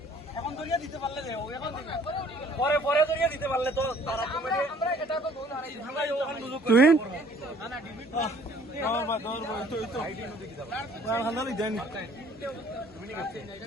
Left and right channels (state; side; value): normal; both; correlation 0.57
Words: দরিয়া দিতে পারলে রে এখন পরে পরে দরিয়া দিতে পারলে তো তারা কমেডি আমরা এটা তো গোল হারাই আমরা ওখানে সুযোগ তুই না না ডিবিট দৌড় তো আইডি নতে কি দাও হান্দালি দেন মিনি ক্যাপ্টেন এটা